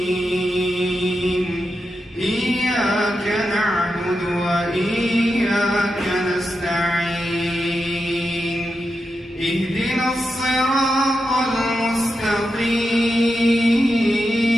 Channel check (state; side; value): normal; both; correlation 0.88